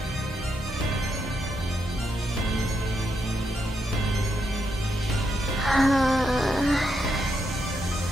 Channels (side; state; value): both; normal; correlation 0.81